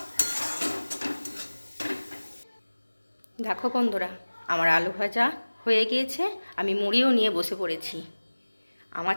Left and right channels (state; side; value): inverted; both; correlation -1.00